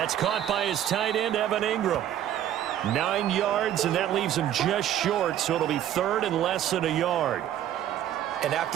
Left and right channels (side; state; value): left; quieter; 11.3 dB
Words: caught by his tight end, Evan Ingram. 9 yards, and that leaves him just short, so it'll be 3rd and less than a yard. And